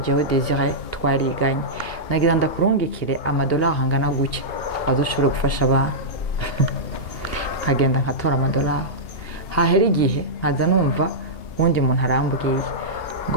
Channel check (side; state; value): right; late; 2.8 ms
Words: Désiré twariganye, nagira ndakurungikire amadolari angana gutya azoshobora gufasha abantu. Nkagenda nkatora amadolari, hahera igihe nkaza numva wundi muntu arambwiye